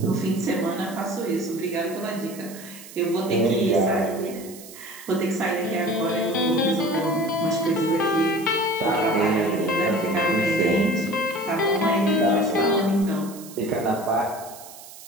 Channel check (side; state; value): right; noise; hiss, 17 dB below the sound